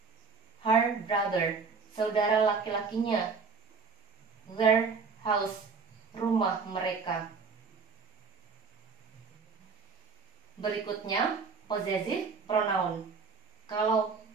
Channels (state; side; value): quieter; left; 5.0 dB